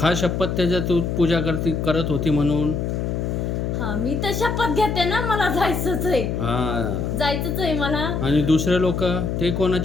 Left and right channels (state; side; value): noise; left; hum, 1 dB below the sound